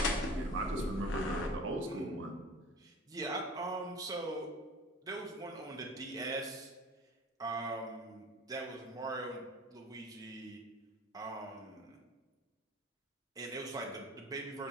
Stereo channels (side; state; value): both; normal; correlation 0.41